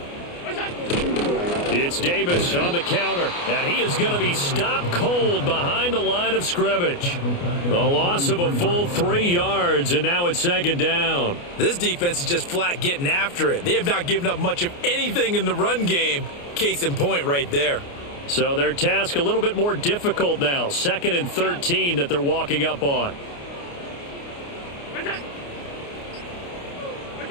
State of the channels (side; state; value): right; late; 29 ms